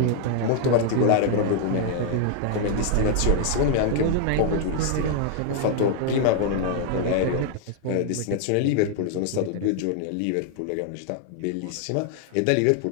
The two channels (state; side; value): different; both; correlation 0.00